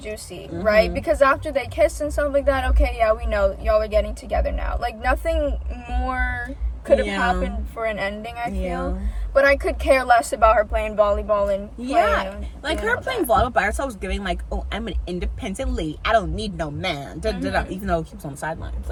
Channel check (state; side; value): identical; both; correlation 1.00